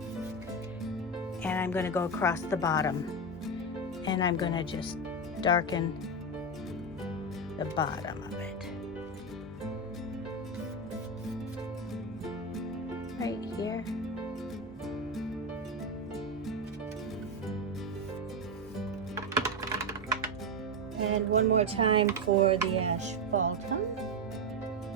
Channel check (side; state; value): both; normal; correlation 0.11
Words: And I'm going to go across the bottom. And I'm going to just darken the bottom of it. Right here. And one more time for the asphaltum.